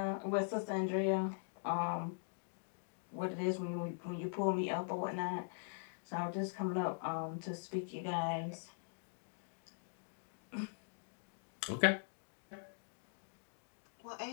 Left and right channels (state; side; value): silent; right; digital silence